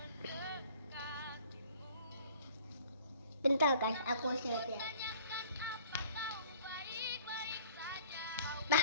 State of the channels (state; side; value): inverted; both; correlation -0.51